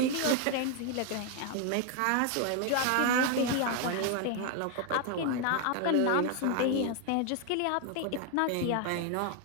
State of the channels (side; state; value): both; different; correlation 0.01